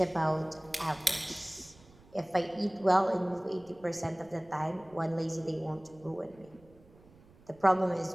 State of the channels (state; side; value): noise; right; rumble, 25 dB below the sound